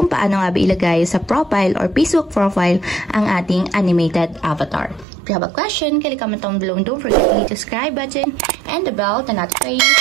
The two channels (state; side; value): drops out; left; at 5.1 s